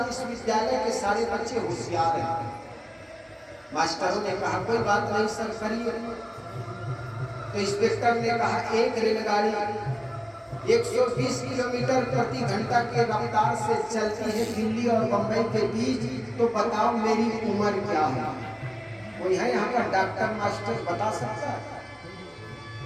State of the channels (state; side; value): identical; both; correlation 1.00